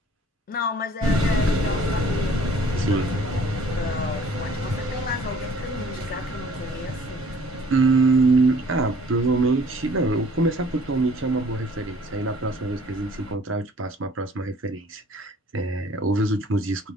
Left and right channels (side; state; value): both; normal; correlation 0.55